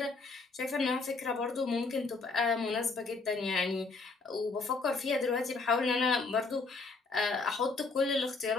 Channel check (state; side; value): quieter; right; 4.0 dB